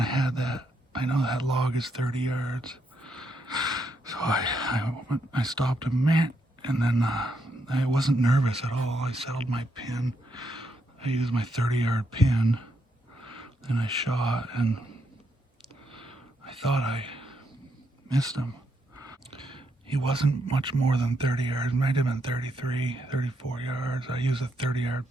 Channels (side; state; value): both; normal; correlation 0.79